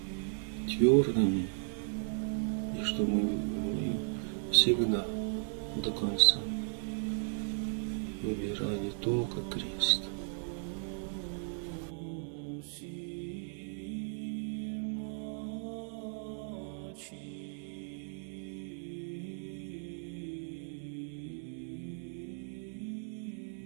твердыми, и чтобы мы всегда до конца выбирали только крест.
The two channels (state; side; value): silent; left; digital silence